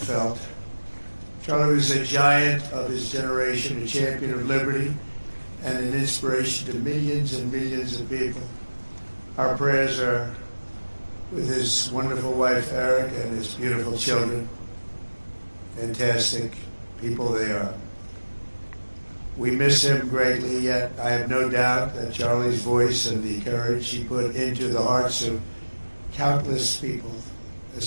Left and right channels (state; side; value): inverted; both; correlation -1.00